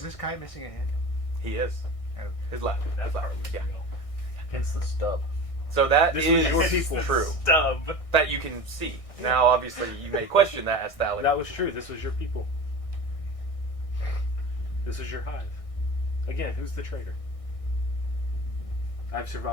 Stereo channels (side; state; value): right; late; 1.6 ms